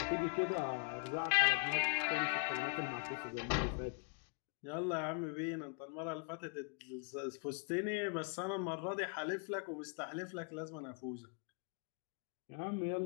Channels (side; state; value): right; quieter; 40.0 dB